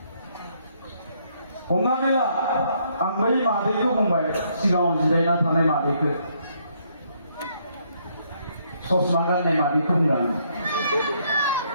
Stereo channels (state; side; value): inverted; both; correlation -0.71